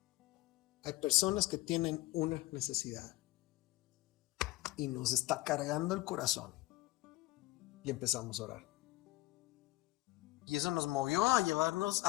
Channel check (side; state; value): right; quieter; 19.6 dB